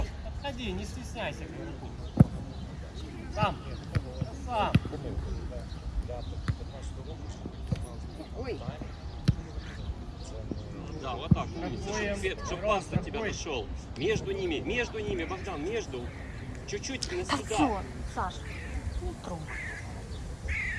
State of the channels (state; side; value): identical; both; correlation 1.00